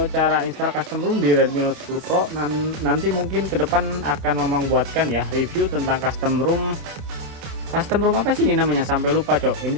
cara install custom ROM di Redmi Note 10 Pro. Nanti mungkin ke depan akan membuatkan ya review tentang custom ROM. Custom ROM apa sih ini namanya? Sampai lupa cok. Ini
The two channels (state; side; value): late; left; 27 ms